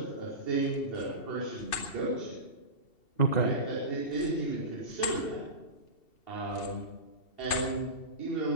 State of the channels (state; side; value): late; right; 2.7 ms